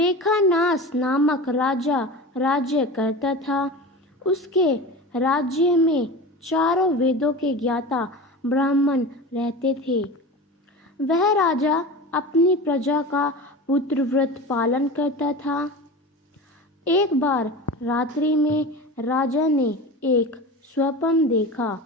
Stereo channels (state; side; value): normal; both; correlation 0.31